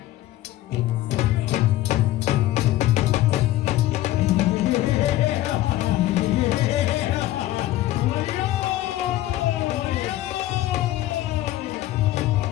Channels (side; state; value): right; quieter; 15.1 dB